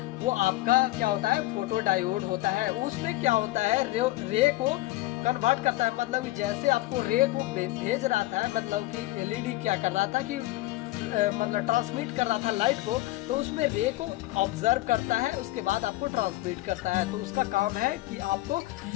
वो आपका क्या होता है, फोटो डायोड होता है। उसमें क्या होता है, रे को कन्वर्ट करता है। मतलब कि जैसे आपको रे को भेज रहा था, मतलब कि एलईडी क्या कर रहा था कि मतलब ट्रांसमिट कर रहा था लाइट को, तो उसमें रे को ऑब्जर्व करता है, उसके बाद आपको ट्रांसमिट करता है। तो उसका काम है कि आपको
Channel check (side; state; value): right; quieter; 18.0 dB